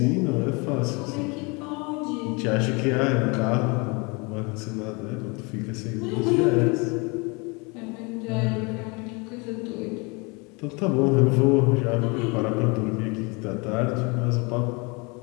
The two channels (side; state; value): right; quieter; 29.2 dB